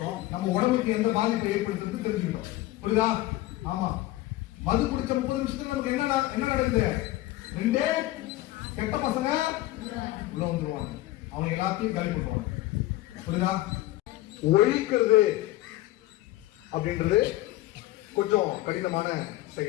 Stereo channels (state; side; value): quieter; right; 16.7 dB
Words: நம்ம உடம்புக்கு எந்த பாதிப்பை ஏற்படுத்துறது தெரிஞ்சுக்கிட்டோம். புரியுதா? ஆமா. மது குடிச்ச 30 நிமிஷத்துல நமக்கு என்ன நடக்குது? ரெண்டே கெட்ட பசங்க உள்ள வந்துருவாங்க, அவங்க எல்லாத்தையும் காலி பண்ணுவாங்க. புரியுதா? ஒழிக்கிறது அப்படின்றது கொஞ்சம் கடினமான